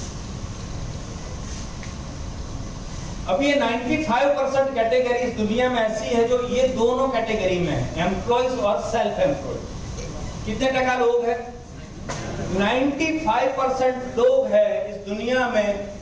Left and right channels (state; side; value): identical; both; correlation 1.00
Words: अब ये 95% कैटेगरी दुनिया में ऐसी है जो ये दोनों कैटेगरी में है, एम्प्लॉइज और सेल्फ एम्प्लॉयड। कितने टका लोग हैं? 95% लोग हैं इस दुनिया में